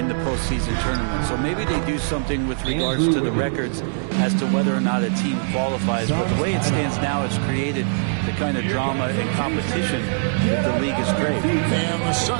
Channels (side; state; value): left; silent; 62 dB below the other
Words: the postseason tournament. So maybe they do something with regards to the records as to whether or not a team qualifies. But the way it stands now, it's created the kind of drama and competition that the league is great. And the